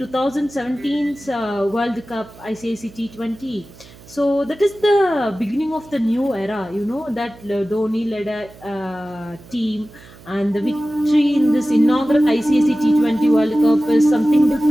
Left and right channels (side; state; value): right; noise; hum, 22 dB below the sound